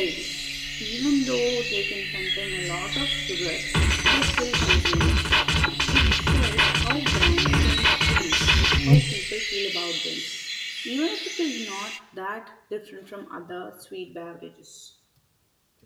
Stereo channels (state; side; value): identical; both; correlation 1.00